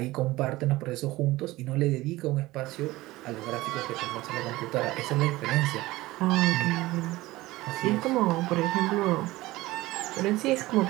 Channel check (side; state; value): left; quieter; 18.7 dB